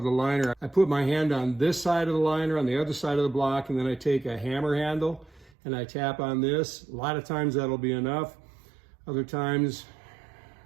the liner. I put my hand on this side of the liner, on the other side of the block, and then I take a hammer handle and I tap on this. A lot of times that'll be enough. Other times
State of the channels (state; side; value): drops out; left; at 5.5 s